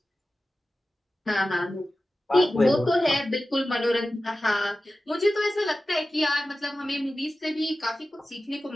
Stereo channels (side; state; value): both; normal; correlation 0.95